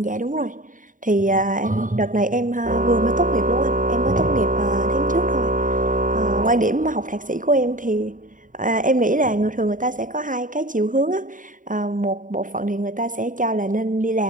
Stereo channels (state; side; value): late; left; 0.38 ms